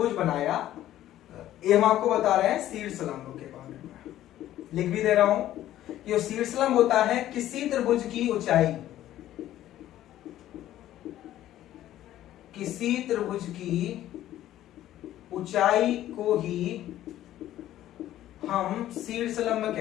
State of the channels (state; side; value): quieter; right; 13.2 dB